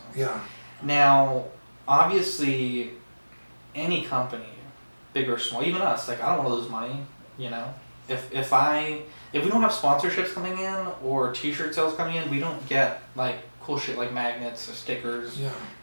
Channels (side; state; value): both; inverted; correlation -1.00